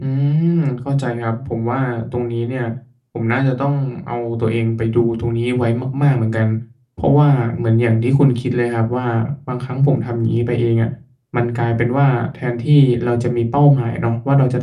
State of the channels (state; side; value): identical; both; correlation 1.00